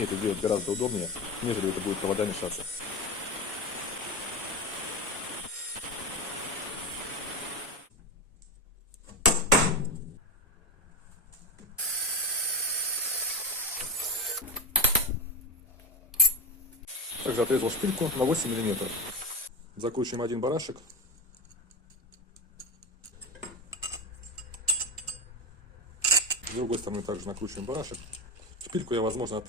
это делать гораздо удобнее, нежели это будет провода мешаться. Также отрезал шпильку на 8 мм. Закручиваем один барашек. С другой стороны также накручиваем барашек. Шпильку я, возможно,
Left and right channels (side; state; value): both; normal; correlation 0.18